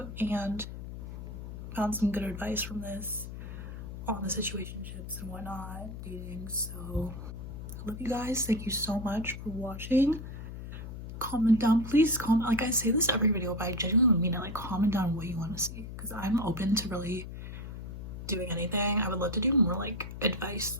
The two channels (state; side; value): noise; left; hum, 9 dB below the sound